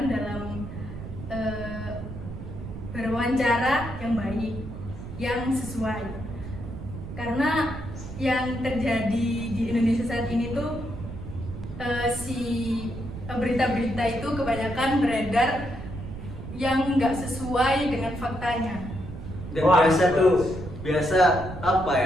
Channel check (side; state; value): right; noise; rumble, 10 dB below the sound